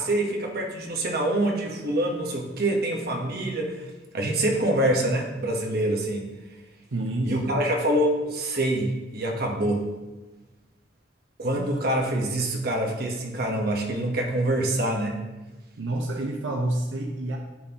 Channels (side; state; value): both; normal; correlation 0.48